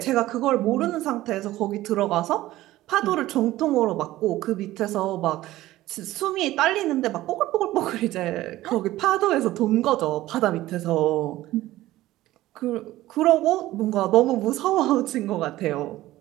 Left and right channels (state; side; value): quieter; left; 16.0 dB